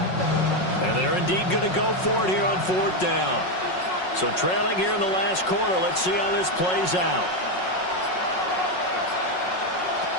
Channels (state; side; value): late; right; 5.5 ms